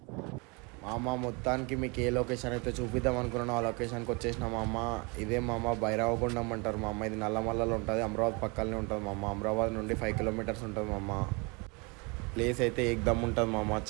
మామ. మొత్తానికి మీకు ఏ లొకేషన్ అయితే చూపిద్దాం అనుకున్నానో ఆ లొకేషన్కి వచ్చేసిన మామ. ఇదే మామ భైరవగుండం అంటారు మామ. ఇది నల్లమల్లలో ఉంటుంది, అమరావతి పక్కనే ఉంటుంది మామ. అమరావతి నుండి 5 కిలోమీటర్స్ ఉంటుంది మామ. ప్లేస్ అయితే ఏకదమ్ ఉంటుంది మామ.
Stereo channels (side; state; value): left; quieter; 29.7 dB